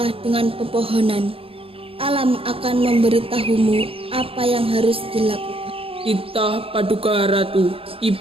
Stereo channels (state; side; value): late; left; 0.27 ms